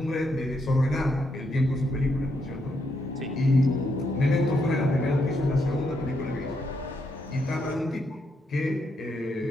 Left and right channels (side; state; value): both; normal; correlation 0.78